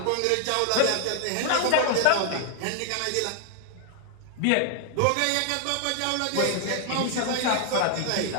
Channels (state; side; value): different; both; correlation 0.00